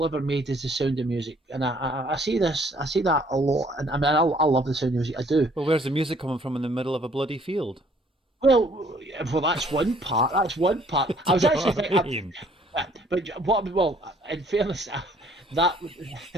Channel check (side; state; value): both; normal; correlation 0.60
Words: ever made is The Sound of Music, and I say this, I say that a lot, and I mean I love The Sound of Music, I do. Well, where's the music coming from in the middle of a bloody field? Well, that's one part. That's one part. Do I you was know actually what I thinking, mean? but what? Well, in fairness, that